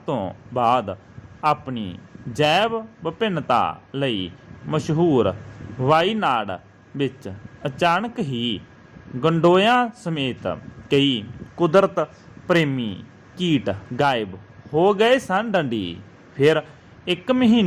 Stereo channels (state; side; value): identical; both; correlation 1.00